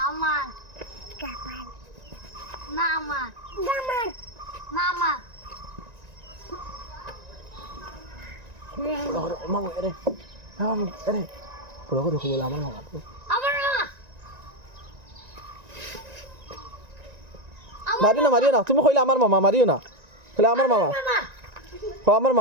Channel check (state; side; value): late; left; 1.9 ms